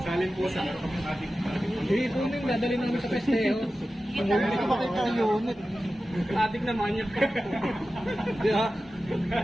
Salin po sa ating. Ito yung dadali namin sa festejo. Hindi ka makita yung unit. Adik na manyak ka. Di ba?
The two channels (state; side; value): normal; both; correlation 0.94